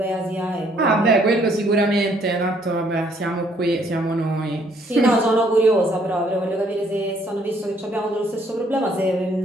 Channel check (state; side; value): normal; both; correlation 0.66